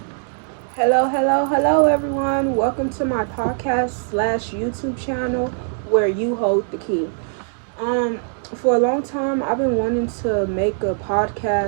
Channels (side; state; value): left; silent; 65 dB below the other